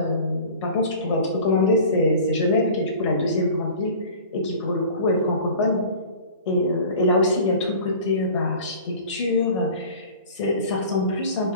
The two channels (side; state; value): both; inverted; correlation -0.42